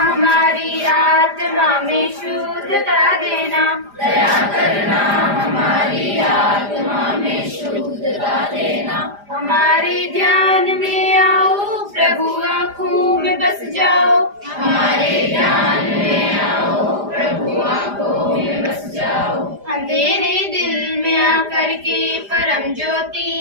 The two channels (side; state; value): left; late; 5.0 ms